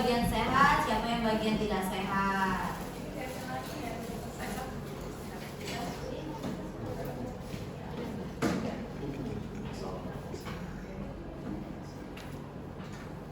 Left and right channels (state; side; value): identical; both; correlation 1.00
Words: sehat, siapa yang bagian tidak sehat.